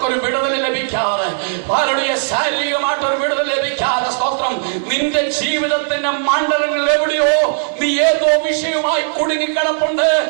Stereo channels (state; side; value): silent; left; 67 dB below the other